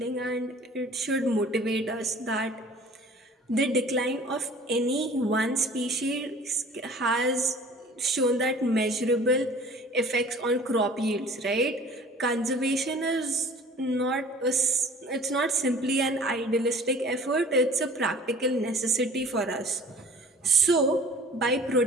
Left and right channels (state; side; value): normal; both; correlation 0.46